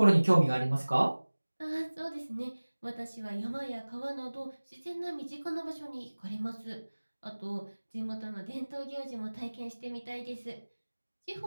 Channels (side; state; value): both; inverted; correlation -1.00